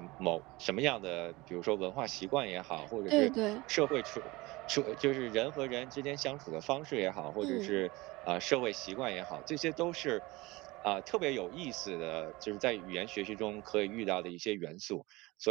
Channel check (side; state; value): left; quieter; 22.0 dB